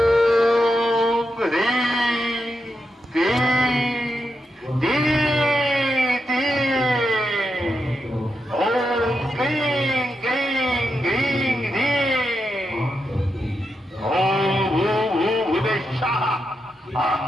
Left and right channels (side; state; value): both; normal; correlation 0.86